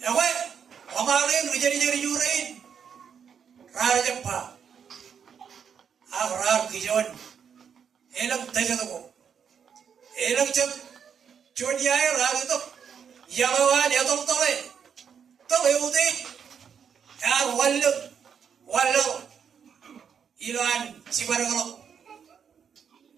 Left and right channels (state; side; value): quieter; left; 7.3 dB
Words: Ewe, amarin rijeri jurin, rar jempa, rar kijon, elang tejatuko, elang cep, cuniai rar itu, yalawan ya tole udah, yar walu, ilan sibarangalo,